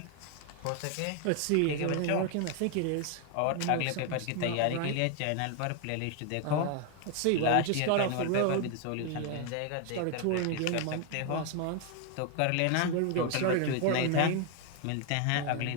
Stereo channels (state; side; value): different; both; correlation 0.01